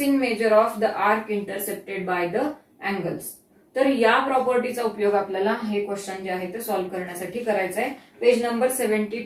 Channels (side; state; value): both; identical; correlation 1.00